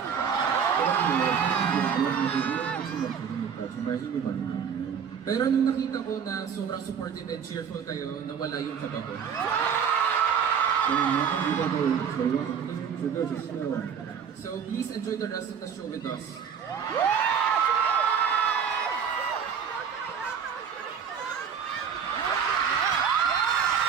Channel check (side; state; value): left; quieter; 7.3 dB